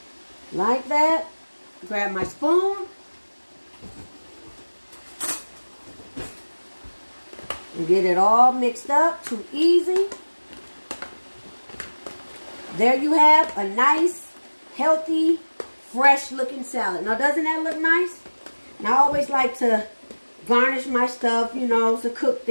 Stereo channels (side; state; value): both; inverted; correlation -1.00